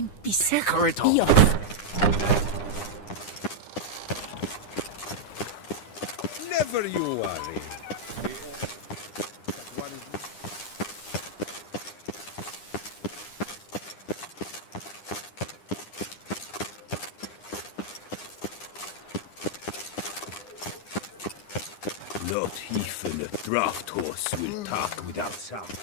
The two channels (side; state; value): right; late; 9.9 ms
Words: busy. Corridor. Be off. Never you worry. Not even a draft horse will talk without sound.